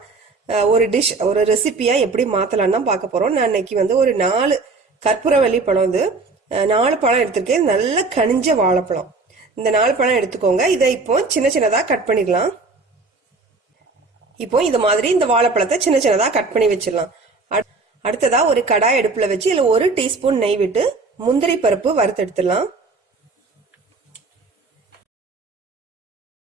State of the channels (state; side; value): quieter; left; 3.9 dB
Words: ஒரு டிஷ், ஒரு ரெசிபியா எப்படி மாத்தலாம் தான் பார்க்க போறோம். நான் இன்னைக்கு ஒரு 4 கற்பூரவள்ளி பழம் 4 பழம் எடுத்திருக்கேன். நல்ல கனிஞ்ச வாழைப்பழம். இந்த 4 பழம் எடுத்துக்கோங்க. இதை இப்போ சின்ன சின்னதா கட் பண்ணிடலாம். இப்போ இந்த மாதிரி இந்த வாழைப்பழத்தை சின்ன சின்னதா கட் பண்ணி வச்சிடலாம். அடுத்ததா ஒரு கடாய் அடுப்புல வச்சு இதுல 1 டீஸ்பூன் நெய் விட்டு முந்திரி பருப்பு வறுத்து எடுத்துடலாம்.